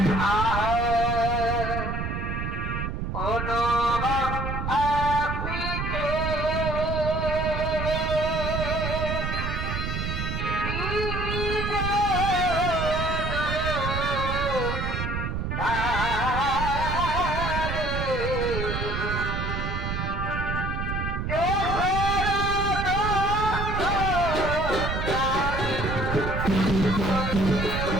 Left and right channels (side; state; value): right; noise; rumble, 3 dB below the sound